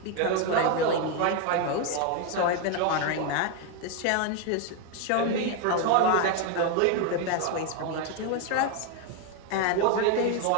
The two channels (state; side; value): different; both; correlation 0.01